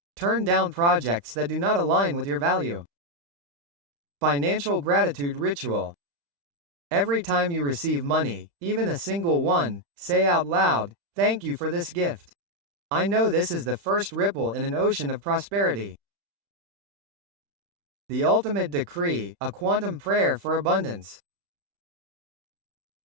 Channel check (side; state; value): left; late; 35 ms